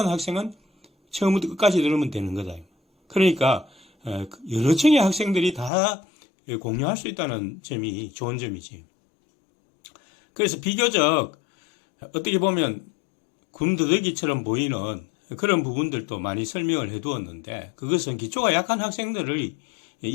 학생은 처음부터 끝까지 들으면 되는 거다. 그러니까 여러 층의 학생들이 다 공유할 수 있다는 점이 좋은 점이지. 그래서 비교적 어떻게 보면 군더더기처럼 보이는 그런 부분들도 많이 설명을 해두었는데, 그것은 기초가 약한 학생들을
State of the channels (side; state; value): right; drops out; at 5.7 s